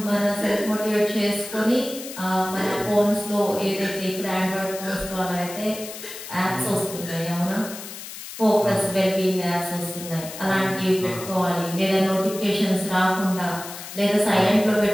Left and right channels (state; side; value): noise; left; hiss, 11 dB below the sound